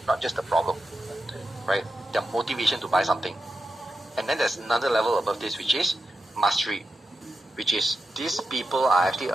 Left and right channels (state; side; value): normal; both; correlation 0.89